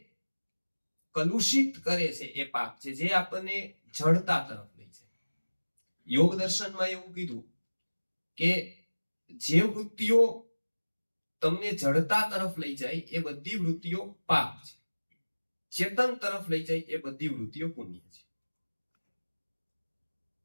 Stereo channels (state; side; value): inverted; both; correlation -1.00